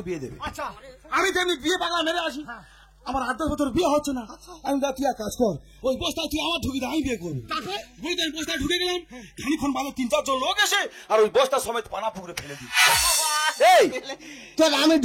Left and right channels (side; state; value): both; identical; correlation 1.00